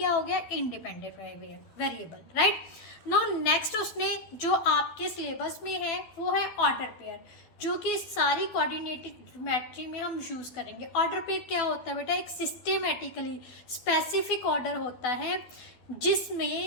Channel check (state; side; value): late; right; 12 ms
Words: हो गया? Independent variable, right. No next उसने जो आपके सिलेबस में है वो है ऑर्डर पेयर, जो कि सारी कोऑर्डिनेटेड ज्योमेट्री में हम यूज़ करेंगे। ऑर्डर पेयर क्या होता है बेटा? एक सिस्टेमेटिकली स्पेसिफिक ऑर्डर होता है